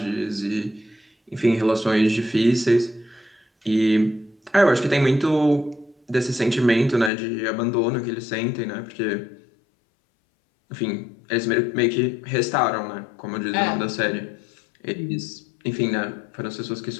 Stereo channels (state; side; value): drops out; right; at 7.1 s